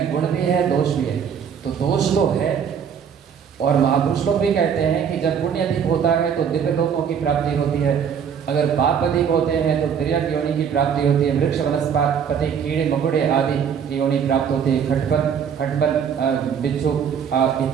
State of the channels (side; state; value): left; quieter; 7.5 dB